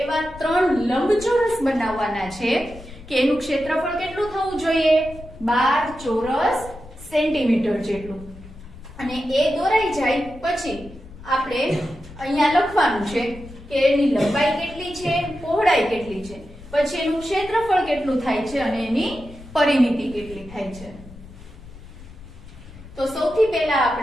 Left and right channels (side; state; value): left; noise; rumble, 17 dB below the sound